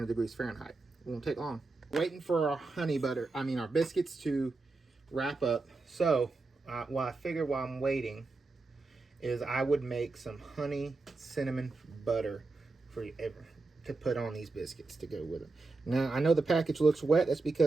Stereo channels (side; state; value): left; quieter; 3.6 dB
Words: degrees Fahrenheit. It won't take long. Waiting for our biscuits to wrap up. So what I figured while I'm waiting is I would make some honey cinnamon butter for you to put on these biscuits to go with them. Now, I know the package looks wet. That's